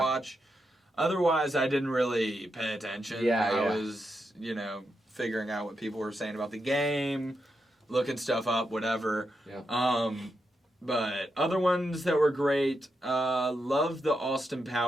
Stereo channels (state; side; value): normal; both; correlation 0.85